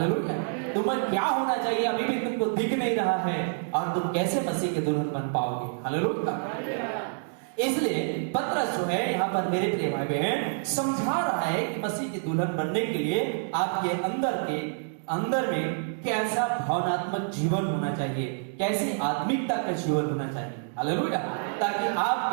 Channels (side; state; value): left; silent; digital silence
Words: तुम्हें क्या होना चाहिए अभी भी तुमको दिख नहीं रहा है, और तुम कैसे मसीह के दुल्हन बन पाओगे? हालेलुया। इसलिए पतरस जो है यहाँ पर मेरे प्रिय भाई बहन समझा रहा है कि मसीह के दुल्हन बनने के लिए आपके अंदर में कैसा भावनात्मक जीवन होना चाहिए, कैसी आत्मिकता का जीवन होना चाहिए। हालेलुया। ताकि आप